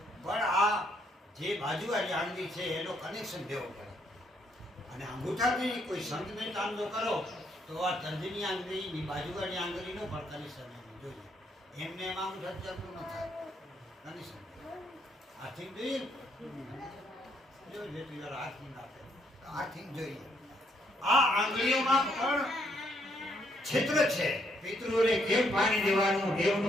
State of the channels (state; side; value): normal; both; correlation 0.72